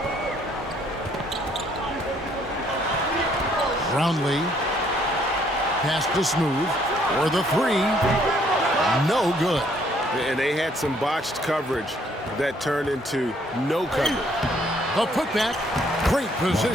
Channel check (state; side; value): normal; both; correlation 0.65